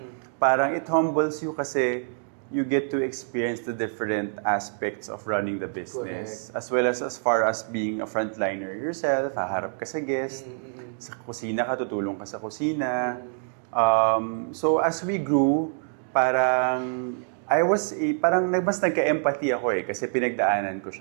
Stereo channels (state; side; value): silent; left; digital silence